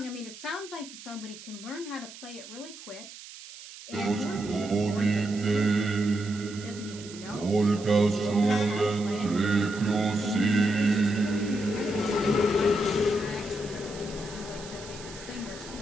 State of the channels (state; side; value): noise; right; hiss, 16 dB below the sound